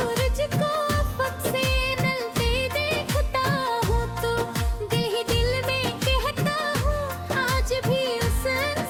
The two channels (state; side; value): identical; both; correlation 1.00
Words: को अफक से नलते देखता हूँ तो दिल में कहता हूँ आज भी उस